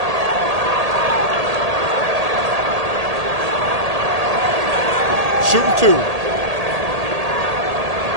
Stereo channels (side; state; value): left; late; 1.8 ms